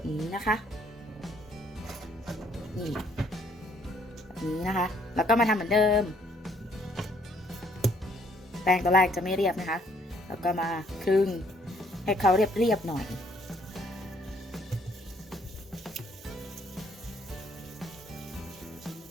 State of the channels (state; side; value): normal; both; correlation 0.65